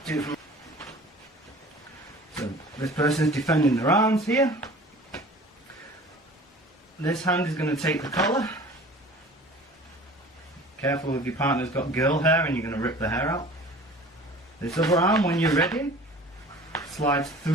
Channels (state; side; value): normal; both; correlation 0.44